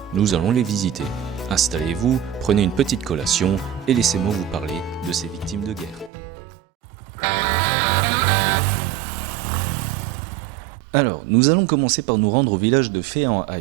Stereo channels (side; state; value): left; drops out; at 6.1 s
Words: nous allons les visiter. Installez-vous, prenez une petite collation et laissez-moi vous parler de ces victimes de guerre. Alors, nous allons commencer par nous rendre au village de